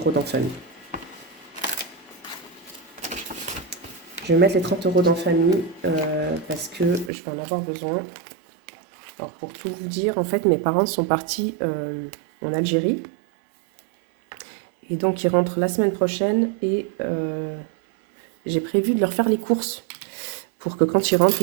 dans famille. Je vais mettre les 30 € dans famille parce que je vais en avoir besoin. Alors, pour tout vous dire, en fait, mes parents sont partis en Algérie. Et donc, ils rentrent la semaine prochaine et j'ai prévu de leur faire les courses pour que quand ils rentrent,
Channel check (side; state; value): left; drops out; at 7.1 s